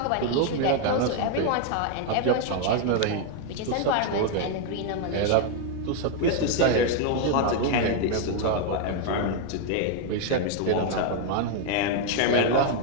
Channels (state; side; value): different; both; correlation 0.00